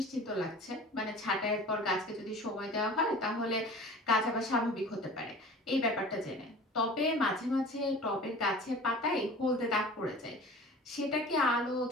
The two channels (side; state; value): both; normal; correlation 0.41